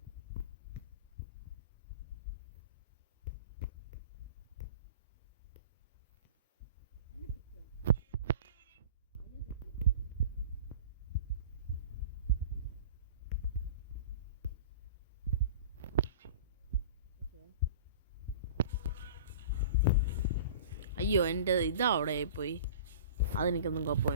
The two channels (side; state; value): both; inverted; correlation -0.39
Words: അയ്യോ എൻ്റെ ഇതാ അവിടെ പോയി. അതെനിക്കൊന്നും